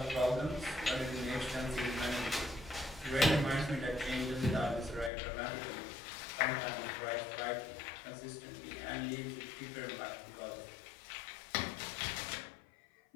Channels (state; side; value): drops out; right; at 5.1 s